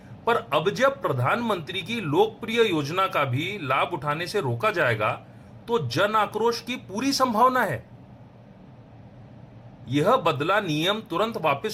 पर अब जब प्रधानमंत्री की लोकप्रिय योजना का भी लाभ उठाने से रोका जाएगा तो जन आक्रोश की पूरी संभावना है। यह बदला नियम तुरंत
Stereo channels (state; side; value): identical; both; correlation 1.00